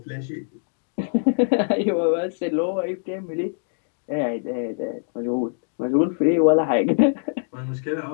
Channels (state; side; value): silent; right; digital silence